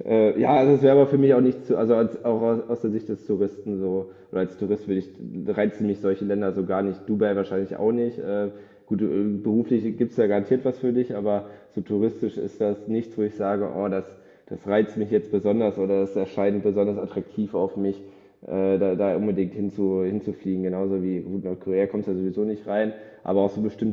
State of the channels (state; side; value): identical; both; correlation 1.00